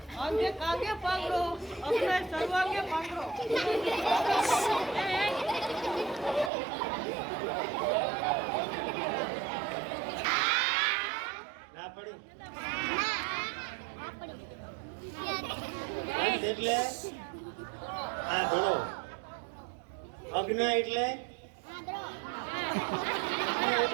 આંધે કાંગે પાંગડો અપનાય સર્વાંગે પાંગડો ના પડી અંત એટલે આંધળો, અગ્ન એટલે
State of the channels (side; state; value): left; drops out; at 6.5 s